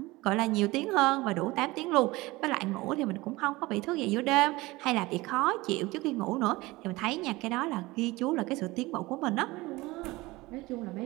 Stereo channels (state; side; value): quieter; left; 20.9 dB